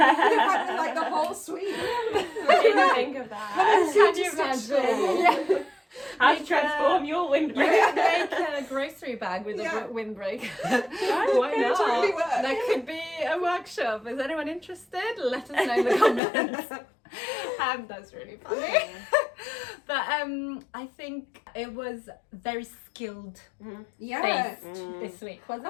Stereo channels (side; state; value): right; drops out; at 16.2 s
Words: Like the whole suite. I didn't think of that. Can you imagine? How to transform your windbreaker. Make a grocery bag with a windbreaker. Why not? Really work. That could be a workshop. Is anyone interested? Let us know in the comments. That's really funny. But I think it was very skilled based this week,